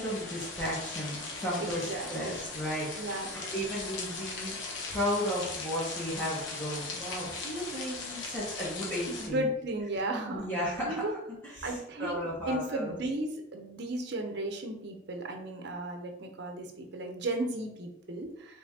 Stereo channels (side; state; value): both; normal; correlation 0.24